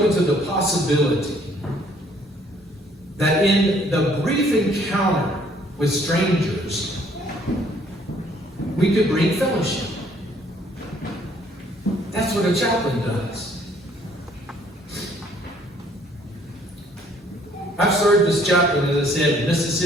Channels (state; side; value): normal; both; correlation 0.62